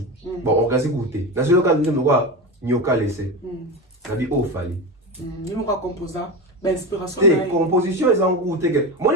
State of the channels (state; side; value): normal; both; correlation 0.21